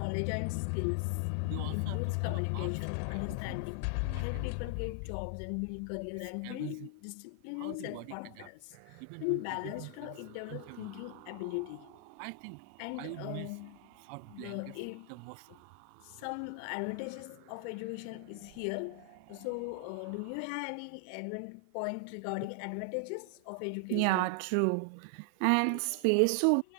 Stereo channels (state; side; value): different; both; correlation 0.00